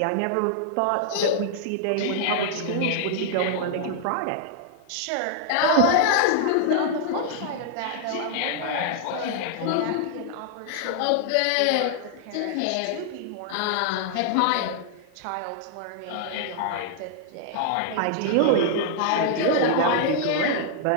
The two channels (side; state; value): both; different; correlation -0.01